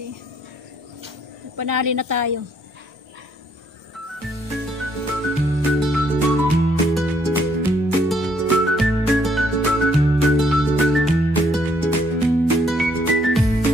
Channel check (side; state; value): both; normal; correlation 0.68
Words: Panali na tayo.